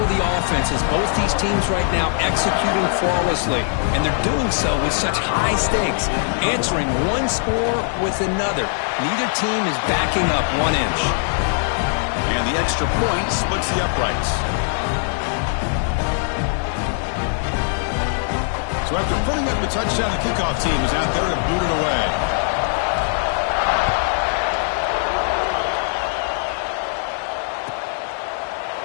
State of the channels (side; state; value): right; silent; digital silence